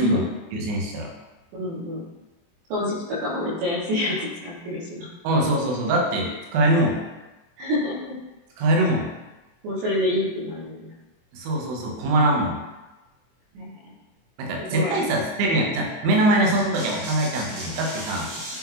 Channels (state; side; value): late; left; 24 ms